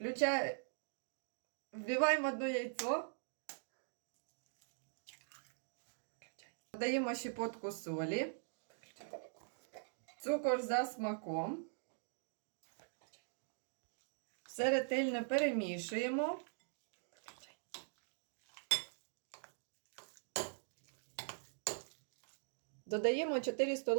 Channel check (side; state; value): left; silent; digital silence